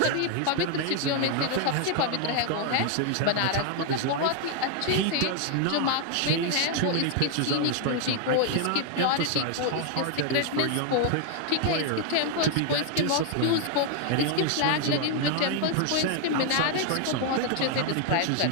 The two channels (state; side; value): different; both; correlation 0.00